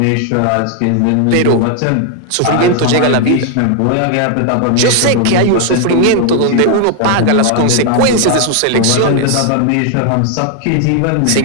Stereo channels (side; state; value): both; different; correlation 0.00